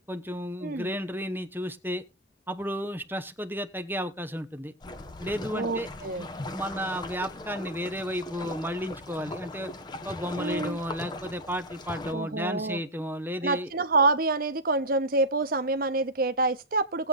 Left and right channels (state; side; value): normal; both; correlation 0.04